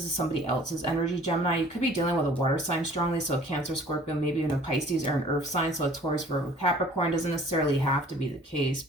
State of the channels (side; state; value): both; normal; correlation 0.52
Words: is somebody else's energy, Gemini. You could be dealing with a water sign strongly, so a Cancer, Scorpio, maybe even a Pisces or an Earth sign, so a Taurus, Virgo, Capricorn. Doesn't necessarily have to be the case,